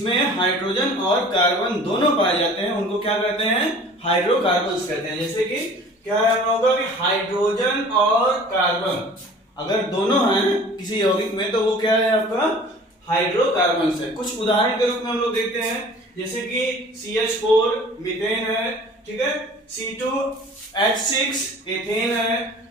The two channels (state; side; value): normal; both; correlation 0.46